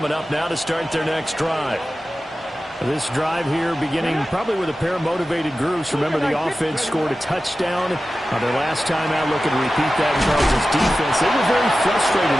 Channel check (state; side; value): normal; both; correlation 0.94